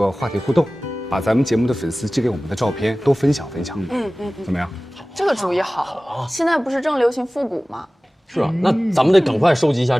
话题互动，把咱们节目的粉丝寄给我们的照片都分享分享。怎么样？这个主意好。现在不是正流行复古吗？是啊，那咱们得赶快收集一下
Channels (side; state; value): both; normal; correlation 0.98